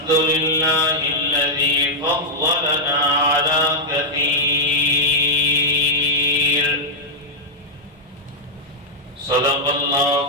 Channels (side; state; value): both; normal; correlation -0.05